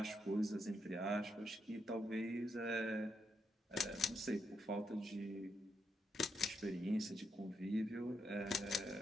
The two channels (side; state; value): both; normal; correlation 0.80